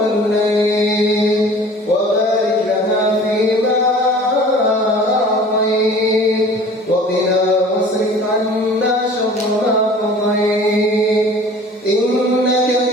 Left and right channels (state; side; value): normal; both; correlation 0.46